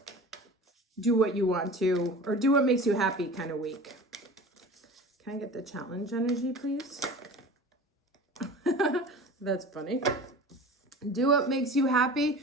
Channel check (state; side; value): normal; both; correlation 0.38